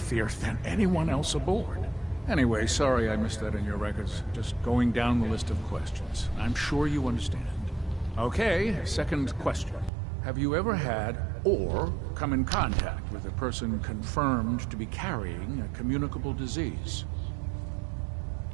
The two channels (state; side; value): drops out; left; at 9.9 s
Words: than anyone else aboard. Anyway, sorry I missed that in your records. Just going down the list of questions. I'm sure you understand. Okay, second question. Have you ever had or come in contact with a person confirmed to be carrying a communicable disease?